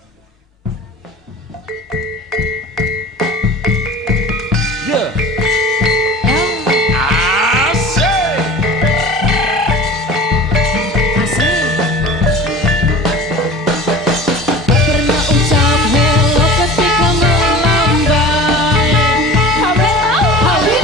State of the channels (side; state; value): both; normal; correlation 0.39